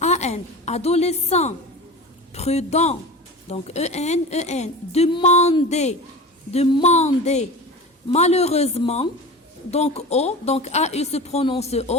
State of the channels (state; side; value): normal; both; correlation 0.32